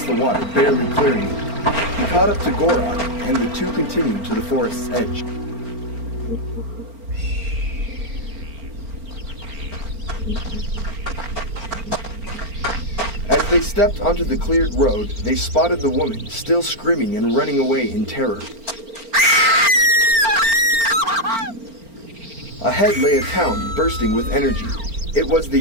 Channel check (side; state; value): left; late; 4.4 ms